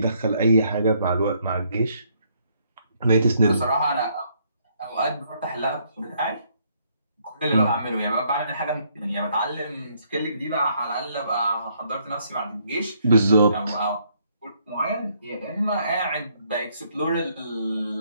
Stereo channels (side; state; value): both; inverted; correlation -0.70